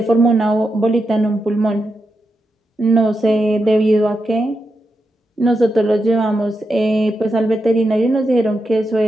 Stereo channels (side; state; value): both; normal; correlation 0.86